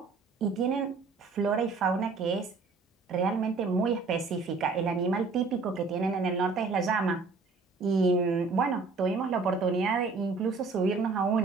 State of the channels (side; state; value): left; quieter; 4.3 dB